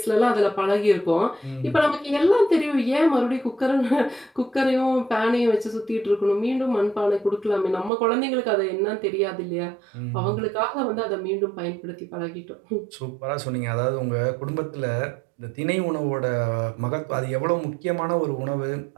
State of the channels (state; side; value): drops out; left; at 7.9 s